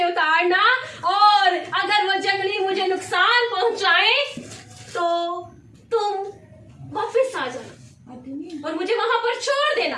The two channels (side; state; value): both; identical; correlation 1.00